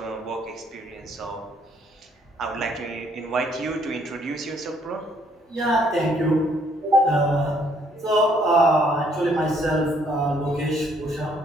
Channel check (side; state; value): both; normal; correlation 0.66